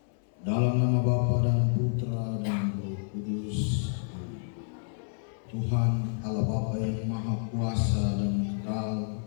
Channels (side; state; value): right; silent; 58 dB below the other